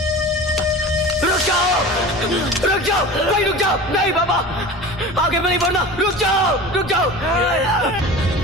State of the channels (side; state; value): both; normal; correlation 0.35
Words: रुक जाओ, भाई रुक जाओ। नहीं बाबा, आगे नहीं बढ़ना। रुक जाओ।